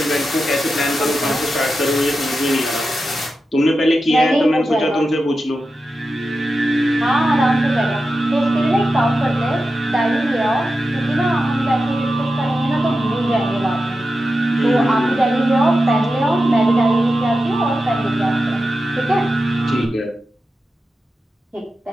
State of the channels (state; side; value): normal; both; correlation 0.91